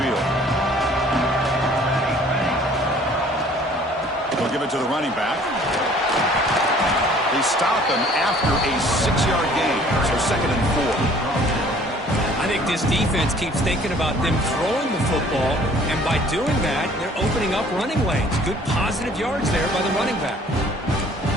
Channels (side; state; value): both; normal; correlation 0.54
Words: field. They'll give it to the running back. They stop him after a 6-yard gain. So 2nd and 4. I think this defense keeps thinking about them throwing the football, and by doing that, they're opening up running lanes. Good positive yards there by the running back.